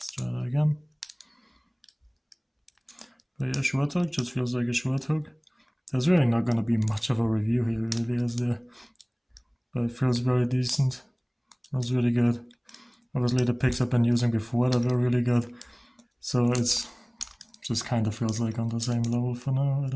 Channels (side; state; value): both; identical; correlation 1.00